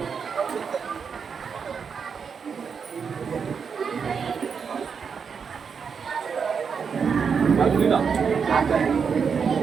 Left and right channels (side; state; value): left; quieter; 6.2 dB